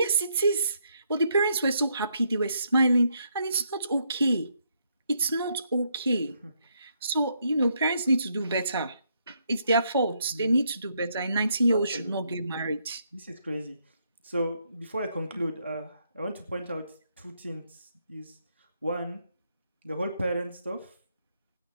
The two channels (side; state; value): both; inverted; correlation -0.75